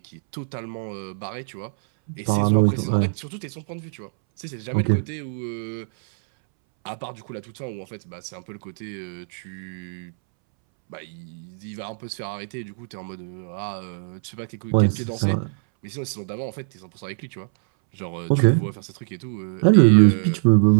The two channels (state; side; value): silent; left; 63 dB below the other